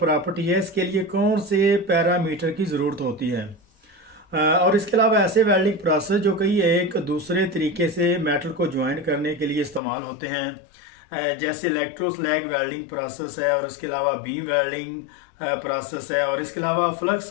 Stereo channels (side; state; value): right; drops out; at 9.8 s